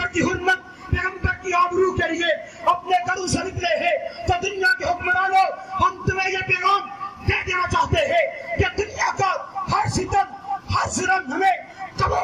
کی حرمت، پیغمبر کی آبرو کے لیے اپنے گھروں سے نکلے ہیں۔ تو دنیا کے حکمرانوں، ہم تمہیں یہ پیغام دے دینا چاہتے ہیں کہ دنیا کا ہر ستم، ہر ظلم ہمیں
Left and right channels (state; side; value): identical; both; correlation 1.00